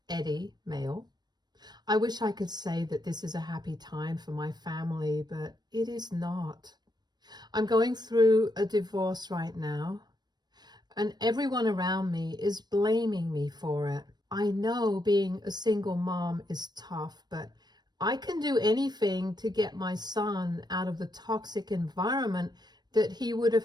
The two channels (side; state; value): left; late; 0.20 ms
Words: Eddie, male. I wish I could say that this is a happy time for my family, but it is not. I'm going through a divorce right now, and everyone around me is blaming me for it. I know being a single mom is tough, but I can do anything to get my son out of the toxic environment that he would have